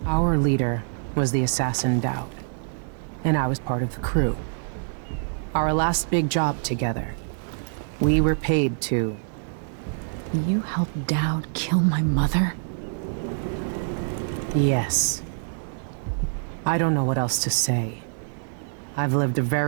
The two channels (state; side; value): silent; left; 61 dB below the other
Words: Our leader was the assassin Dowd, and I was part of the crew. Our last big job together, we were paid to... You helped Dowd kill my mother? Yes. I don't know what else to say. I've lived a